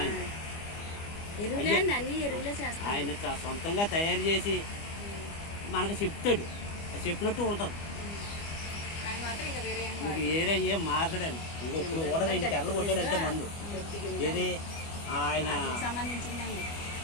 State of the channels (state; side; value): late; right; 25 ms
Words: ఆయన. సొంతంగా తయారు చేసి మనకు చెప్తాడు, చెప్పినట్టు ఉంటుంది. ఇంక వేరే ఏం మార్చడండి. ఇంకొప్పుడు కూడా 2 తెరలు కొట్టాడంటే మందు ఏది ఆయన